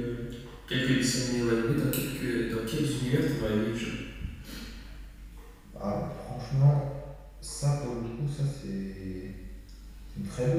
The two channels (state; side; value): identical; both; correlation 1.00